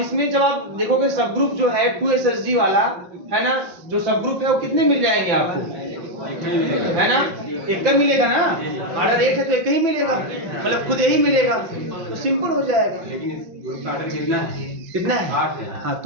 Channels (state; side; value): late; left; 5.9 ms